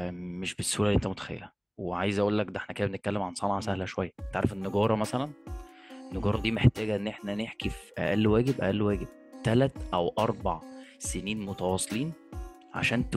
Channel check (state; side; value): identical; both; correlation 1.00